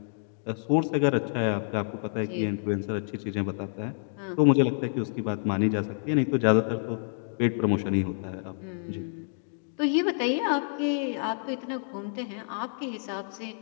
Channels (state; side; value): silent; right; digital silence